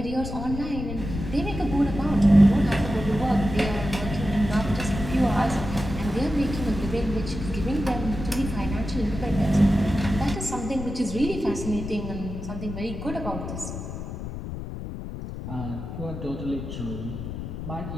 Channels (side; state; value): left; noise; rumble, 7 dB below the sound